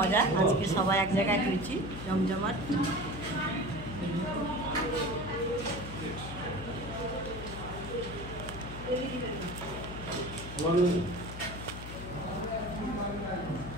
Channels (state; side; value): noise; left; hum, 10 dB below the sound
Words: আজকে সবাই এক জায়গায় হয়েছি জমজমাট।